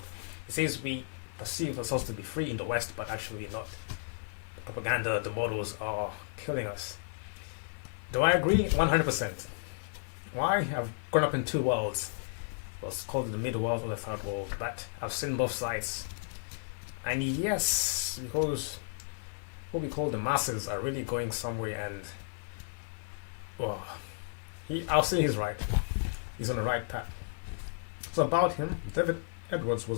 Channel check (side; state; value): right; silent; 56 dB below the other